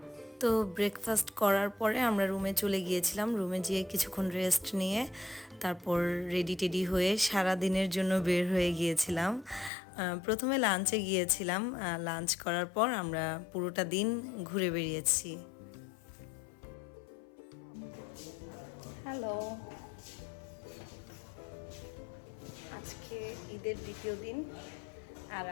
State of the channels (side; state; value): right; drops out; at 9.7 s